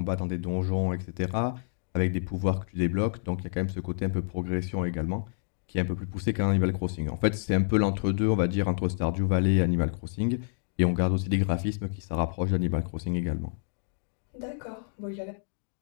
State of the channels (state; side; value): silent; right; digital silence